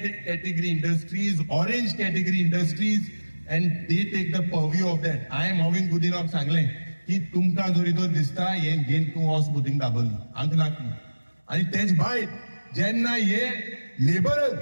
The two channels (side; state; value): both; inverted; correlation -1.00